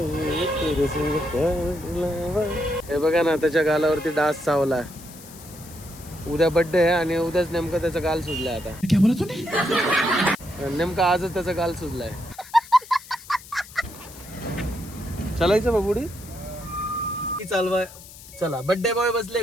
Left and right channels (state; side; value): noise; left; hiss, 18 dB below the sound